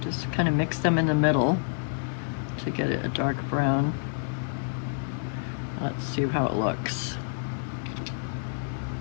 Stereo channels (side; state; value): right; silent; digital silence